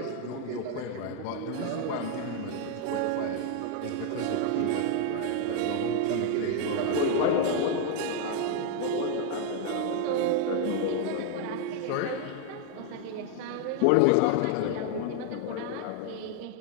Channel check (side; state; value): both; different; correlation 0.00